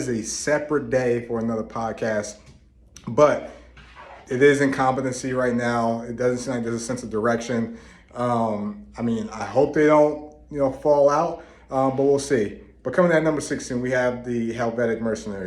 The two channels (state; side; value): identical; both; correlation 1.00